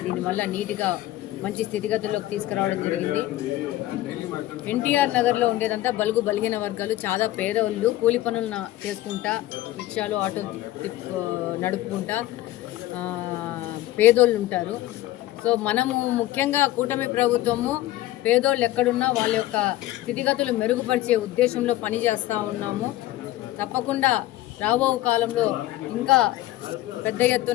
దీనివల్ల నీట్గా మంచి స్థితిగతుల్లోకి తీసుకురావడం జరిగింది. ఎన్టీఆర్ నగర్లో ఉండేదంతా బలుగు బలిగిన వర్గాలు, చాలా పేదవాళ్ళు, కూలి పనులు చేసుకుంటా, రిక్షాలు, ఆటో నడుపుకుంటా పేదోళ్ళు ఉంటారు. సో మనము ముఖ్యంగా కూటమి ప్రభుత్వము పేదోళ్ళు ఎక్కడున్నా వాళ్ళ యొక్క స్థితిగతులు మెరుగుపరిచే ఉద్దేశంలో పనిచేస్తూ ఉన్నాము. తప్పకుండా రాబో కాలంలో ఇంకా పెద్ద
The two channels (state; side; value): quieter; right; 15.5 dB